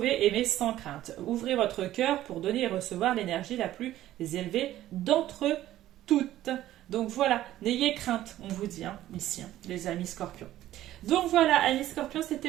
aimer sans crainte. Ouvrez votre cœur pour donner et recevoir l'énergie la plus élevée d'entre toutes. Donc voilà, n'ayez crainte, on vous dit, hein, ici, hein, les amis Scorpions. Donc voilà, amis Scorpions,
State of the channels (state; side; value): quieter; left; 13.8 dB